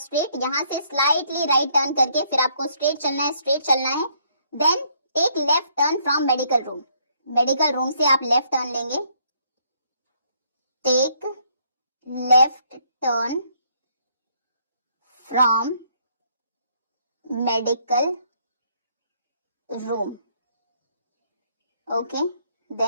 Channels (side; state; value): both; inverted; correlation -0.68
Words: यहाँ से स्लाइटली राइट टर्न करके फिर आपको स्ट्रेट चलना है, स्ट्रेट चलना है। Then take left turn from medical room, medical room से आप लेफ्ट टर्न लेंगे। Take left turn from medical room. Okay,